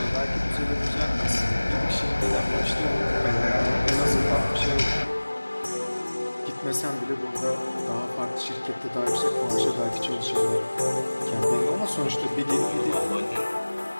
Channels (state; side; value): inverted; both; correlation -1.00